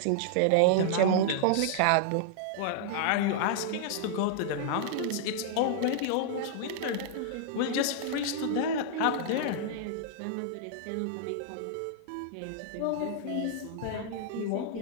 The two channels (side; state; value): both; different; correlation -0.01